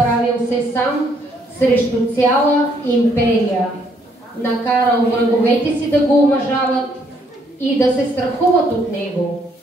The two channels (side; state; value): both; normal; correlation 0.69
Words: се сам срещу цяла империя. Накарал враговете си да го уважават и да се страхуват от него.